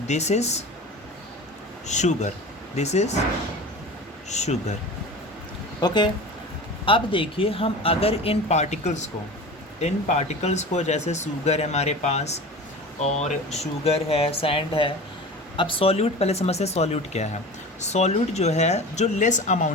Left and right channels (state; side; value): normal; both; correlation 0.34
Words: दिस इज़ शुगर, ओके. अब देखिए हम अगर इन पार्टिकल्स को जैसे शुगर है हमारे पास और शुगर है, सैंड है। अब सॉल्यूट पहले समझते हैं सॉल्यूट क्या है। सॉल्यूट जो है जो लेस